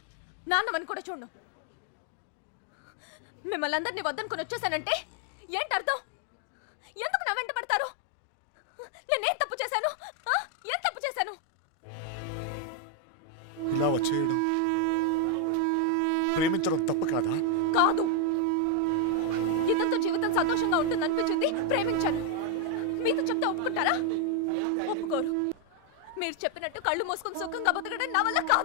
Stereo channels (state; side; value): different; both; correlation 0.01